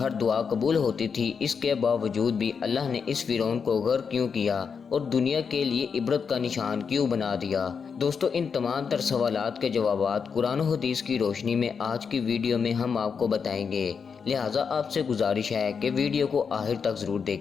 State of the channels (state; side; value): quieter; right; 6.1 dB